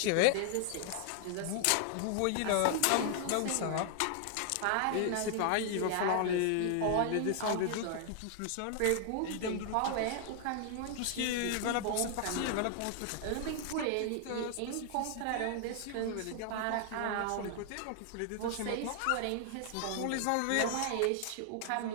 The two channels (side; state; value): both; different; correlation 0.00